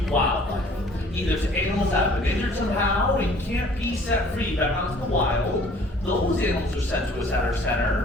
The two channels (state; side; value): normal; both; correlation 0.54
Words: wildlife. Either to animals that have been injured somehow and can't be set free back out into the wild. Those animals are sent to us at our